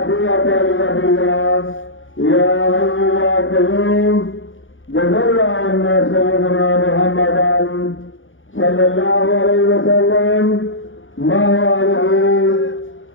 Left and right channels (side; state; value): right; late; 0.57 ms